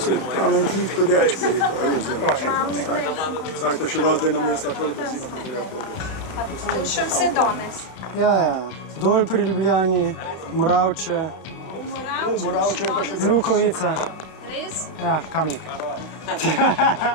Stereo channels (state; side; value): late; right; 31 ms